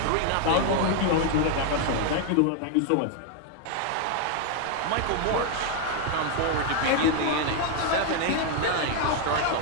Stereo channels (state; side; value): different; both; correlation 0.01